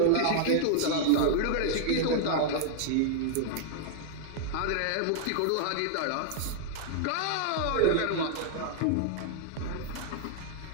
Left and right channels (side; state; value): both; different; correlation -0.01